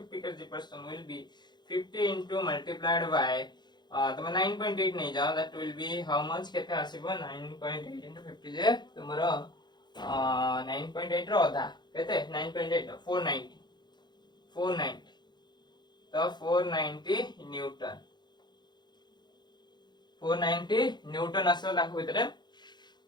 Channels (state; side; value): late; right; 0.21 ms